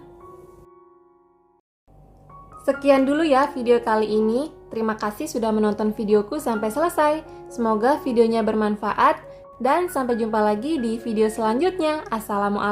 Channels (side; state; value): both; identical; correlation 1.00